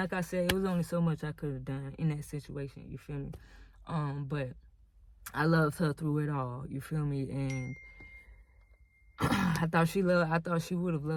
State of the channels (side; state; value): both; identical; correlation 1.00